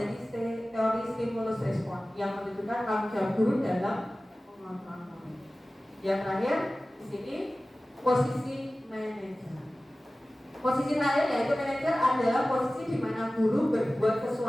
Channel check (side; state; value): both; normal; correlation 0.97